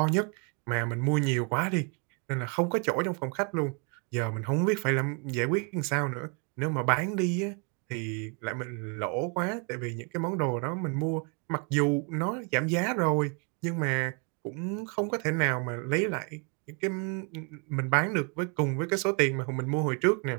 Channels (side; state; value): left; quieter; 36.0 dB